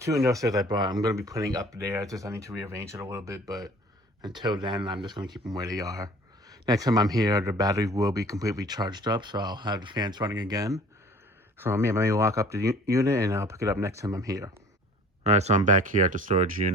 industrials I brought, I'm gonna be putting up there. I need to rearrange it a little bit, but until then, I'm just gonna keep them where they are. Next time I'm here, the battery will be completely charged up, so I'll have the fans running again. So yeah, let me lock up the unit, and I'll pick it up next time I'm here. All right, so I'm back here at the storage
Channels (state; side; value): normal; both; correlation 0.49